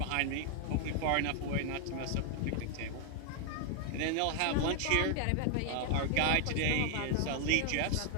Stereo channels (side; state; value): both; different; correlation 0.00